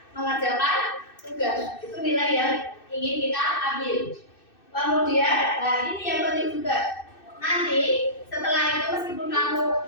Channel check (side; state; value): right; late; 2.6 ms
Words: mengerjakan tugas. Itu nilai yang ingin kita ambil. Kemudian, ini yang penting juga. Nanti setelah itu meskipun kamu